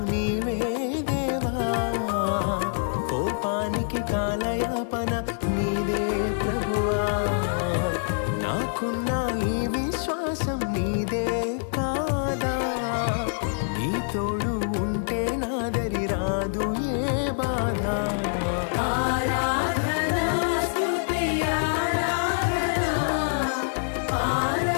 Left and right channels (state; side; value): silent; right; 61 dB below the other